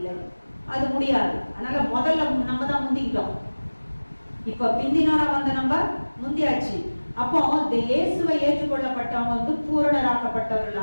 அது முடியாது. அதனால முதல்ல நம்ம தான் முந்திக்கிட்டோம். இப்ப பிந்தினால வந்த நம்ம முந்தியாச்சு. அப்போ இந்த இயேசுவை ஏற்றுக்கொள்ளப்பட்டவங்க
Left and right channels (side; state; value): both; inverted; correlation -1.00